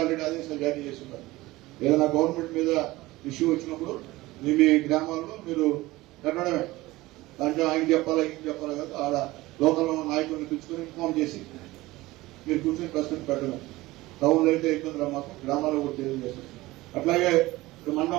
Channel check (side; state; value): left; quieter; 19.1 dB